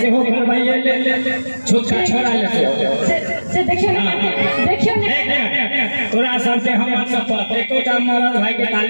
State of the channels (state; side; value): inverted; both; correlation -1.00